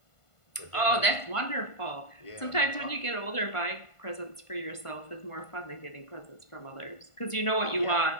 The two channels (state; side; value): late; right; 1.5 ms